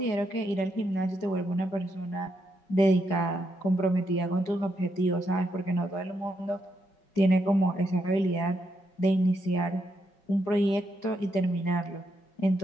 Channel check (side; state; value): right; late; 4.9 ms